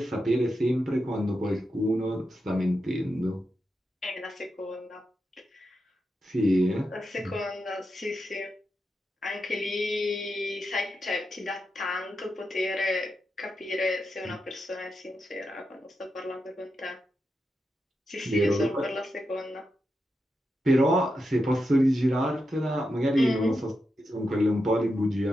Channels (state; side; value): normal; both; correlation 0.87